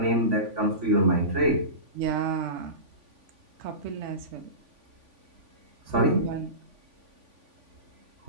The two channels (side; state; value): left; late; 3.5 ms